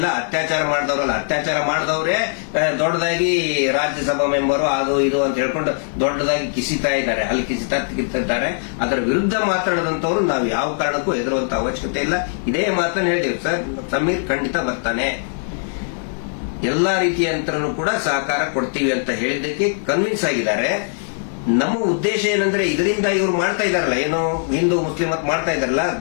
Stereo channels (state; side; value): silent; right; digital silence